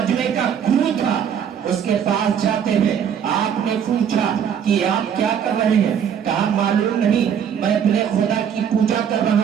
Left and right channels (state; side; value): quieter; left; 8.2 dB